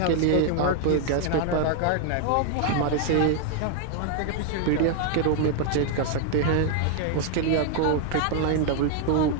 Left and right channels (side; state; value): both; different; correlation 0.00